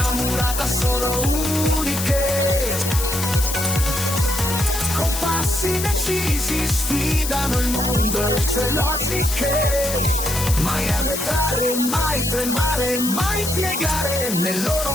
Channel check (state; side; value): noise; left; hiss, 5 dB below the sound